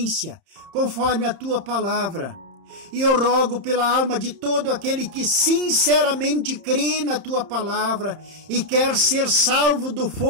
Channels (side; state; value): left; late; 31 ms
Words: conforme a tua palavra. E eu rogo pela alma de todo aquele que sinceramente crê na tua palavra e quer ser salvo do